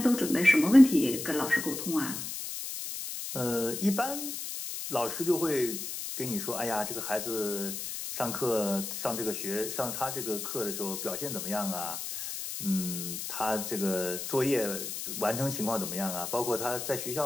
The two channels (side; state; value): left; noise; hiss, 6 dB below the sound